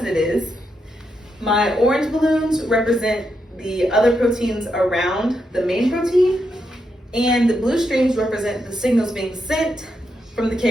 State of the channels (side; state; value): both; normal; correlation 0.83